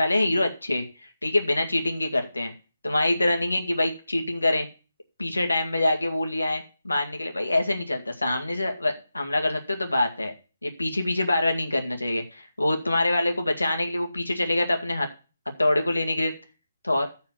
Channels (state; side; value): inverted; both; correlation -0.92